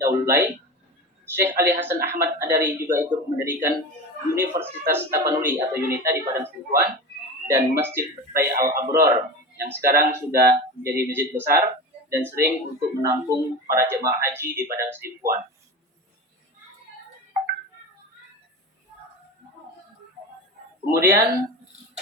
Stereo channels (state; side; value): normal; both; correlation 0.28